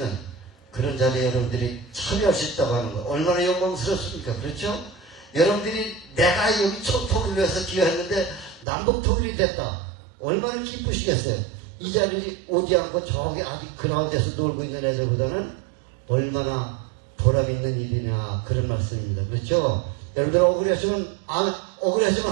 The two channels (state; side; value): drops out; left; at 8.7 s